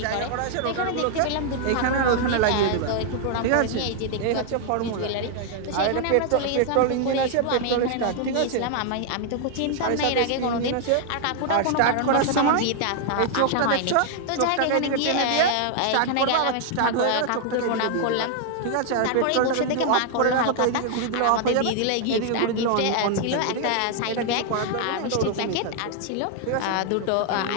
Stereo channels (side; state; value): both; different; correlation 0.00